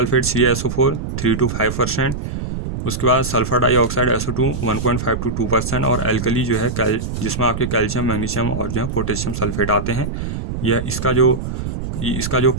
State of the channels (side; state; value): right; noise; rumble, 5 dB below the sound